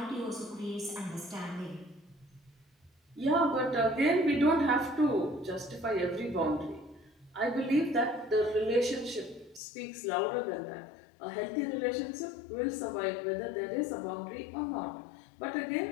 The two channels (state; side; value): drops out; right; at 9.6 s